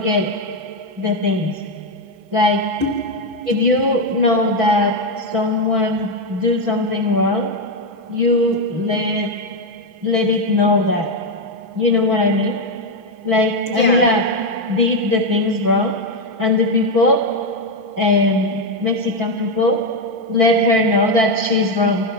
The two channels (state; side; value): late; left; 6.1 ms